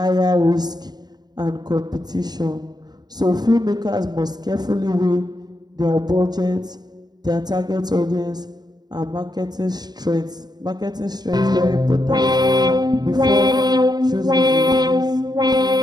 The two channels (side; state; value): left; late; 0.20 ms